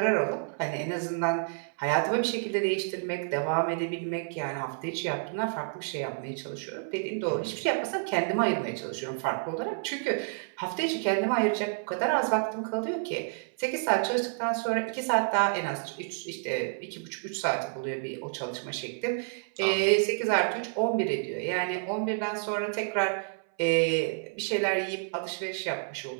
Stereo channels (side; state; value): left; silent; 58 dB below the other